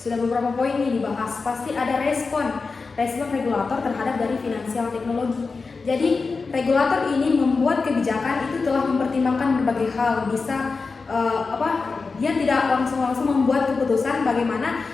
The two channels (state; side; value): quieter; right; 4.4 dB